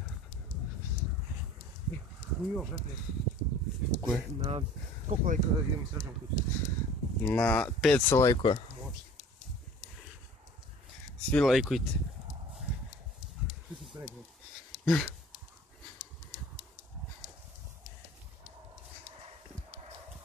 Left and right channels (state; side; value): normal; both; correlation 0.47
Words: Koje? Na koliko lajka idemo srećom kuću? Na 500 lajkova. Može. Svi lajkujte. Svi su se rekli.